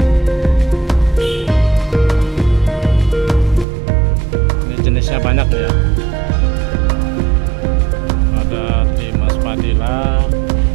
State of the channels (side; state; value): left; drops out; at 3.7 s